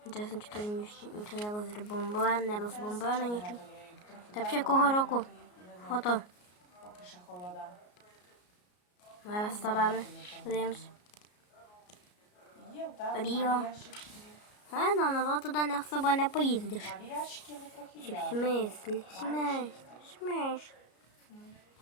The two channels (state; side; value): late; right; 33 ms